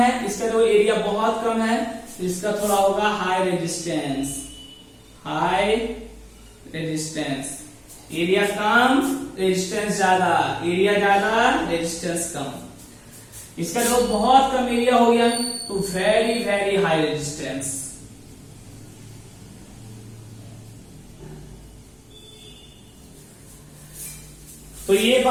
इसका जो एरिया बहुत कम है तो इसका थोड़ा होगा high resistance. High resistance, area कम रेजिस्टेंस ज्यादा, एरिया ज्यादा रेजिस्टेंस कम। इसका जो बहुत कम एरिया हो गया तो वेरी वेरी हाई रेजिस्टेंस। तो ये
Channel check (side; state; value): both; identical; correlation 1.00